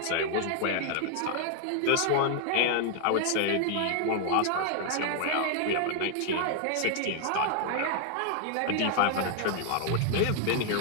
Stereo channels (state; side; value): different; both; correlation 0.00